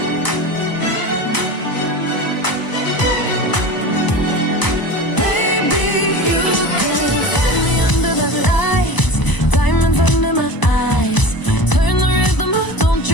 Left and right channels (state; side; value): late; right; 1.0 ms